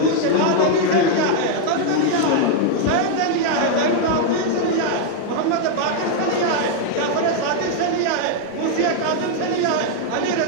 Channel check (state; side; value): different; both; correlation 0.00